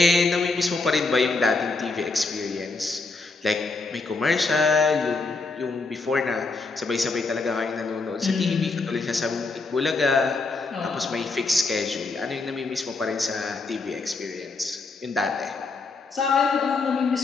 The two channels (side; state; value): right; quieter; 3.8 dB